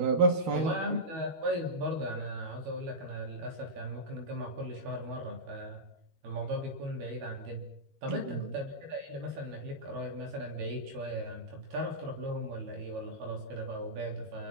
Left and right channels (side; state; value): left; late; 12 ms